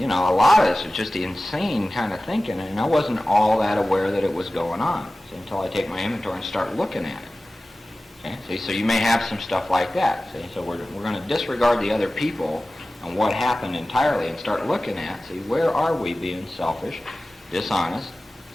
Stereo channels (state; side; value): normal; both; correlation 0.96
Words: know, a lot of this is just insane kind of thinking, and I wasn't all that aware that it was going on, see, until I take my inventory and start looking at it. Okay? See, so you may have some stuff like that. See, so we're going to disregard the other people and what happened entirely and start looking at, see, where are we being selfish, dishonest,